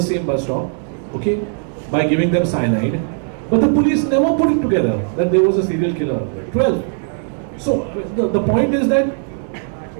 same bus stop, okay, by giving them cyanide. But the police never put it together that there was a serial killer. 12. So the point is that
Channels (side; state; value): left; silent; 56 dB below the other